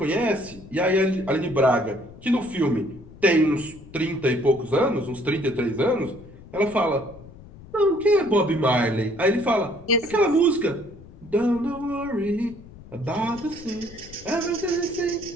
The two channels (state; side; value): noise; left; rumble, 19 dB below the sound